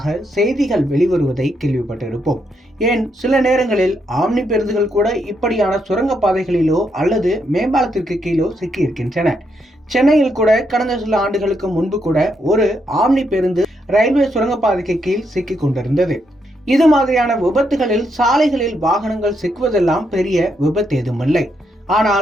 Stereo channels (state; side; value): normal; both; correlation 0.79